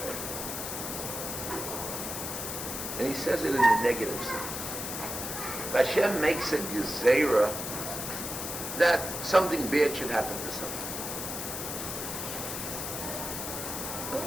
And he says it in the negative sense. Hashem makes a gezerah that something bad should happen to someone.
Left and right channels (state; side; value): noise; left; hiss, 5 dB below the sound